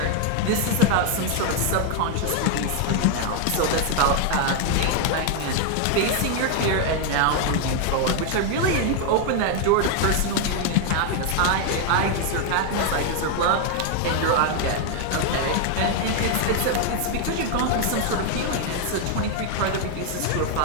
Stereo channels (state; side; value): different; both; correlation 0.00